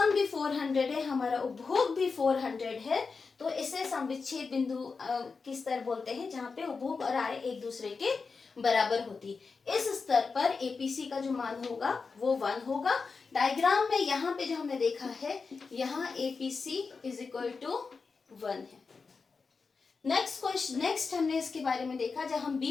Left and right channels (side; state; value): right; quieter; 4.7 dB